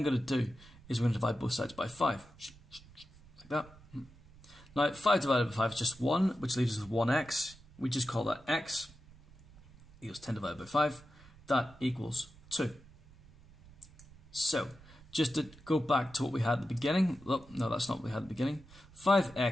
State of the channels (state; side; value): noise; right; rumble, 23 dB below the sound